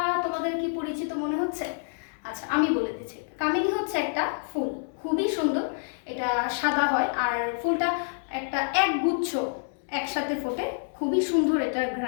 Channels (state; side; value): silent; right; 60 dB below the other